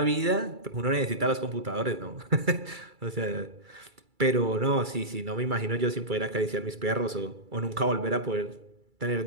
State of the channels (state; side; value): late; left; 2.3 ms